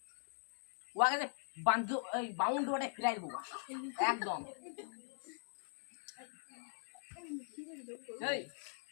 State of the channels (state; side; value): silent; right; 50 dB below the other